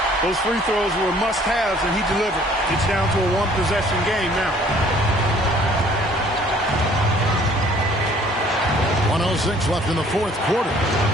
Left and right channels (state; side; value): normal; both; correlation 0.57